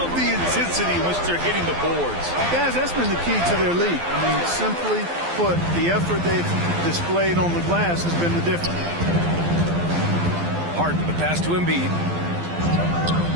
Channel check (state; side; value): late; left; 12 ms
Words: the intensity in which they're hitting the boards. Guys, that's been the key to their lead. I mean, simply put, the effort they've displayed on the glass has been the difference. Harden, the pass to Embiid.